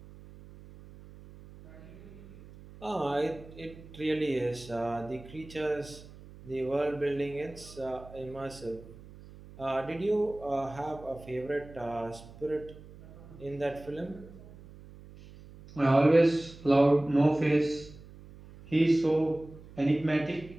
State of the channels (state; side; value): noise; right; hum, 19 dB below the sound